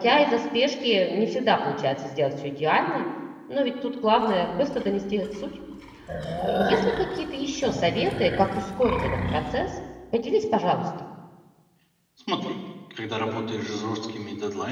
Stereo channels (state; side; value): identical; both; correlation 1.00